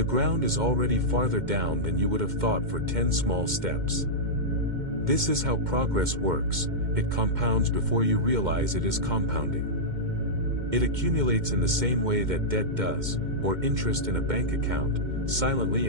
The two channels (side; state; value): left; late; 2.1 ms